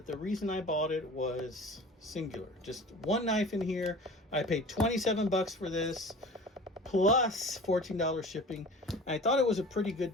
the reason I bought it was singular. Just one knife in here. I paid 27 bucks for this, plus $14 shipping. I thought it was a pretty good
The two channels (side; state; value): both; normal; correlation 0.40